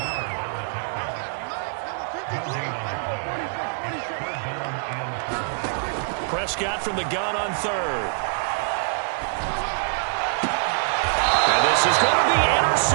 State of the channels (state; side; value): silent; left; digital silence